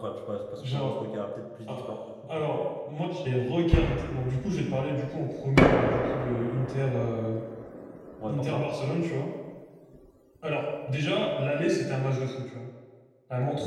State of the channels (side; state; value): both; identical; correlation 1.00